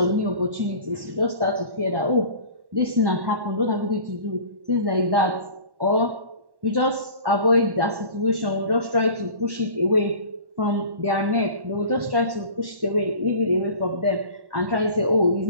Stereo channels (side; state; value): left; late; 1.1 ms